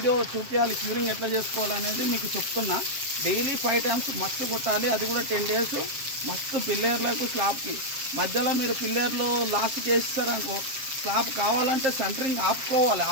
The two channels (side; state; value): left; late; 7.6 ms